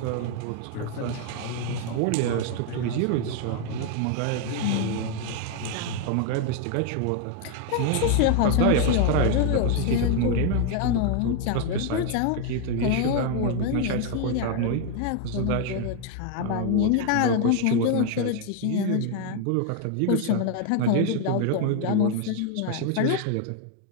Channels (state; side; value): different; both; correlation 0.00